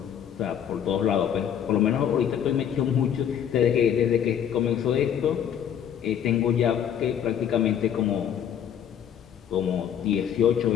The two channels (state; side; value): quieter; right; 9.1 dB